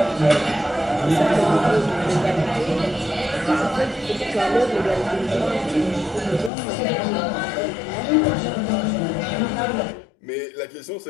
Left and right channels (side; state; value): right; drops out; at 6.5 s